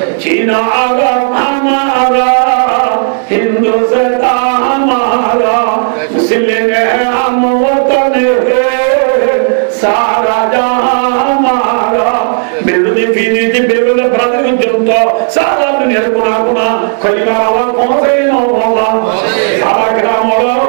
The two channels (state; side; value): silent; left; digital silence